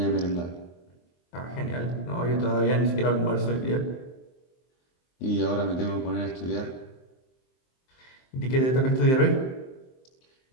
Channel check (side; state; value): right; late; 23 ms